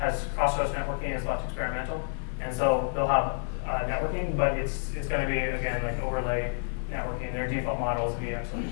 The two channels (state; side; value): silent; right; digital silence